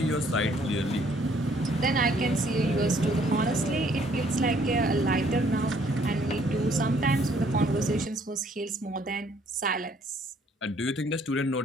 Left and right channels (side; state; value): both; normal; correlation 0.63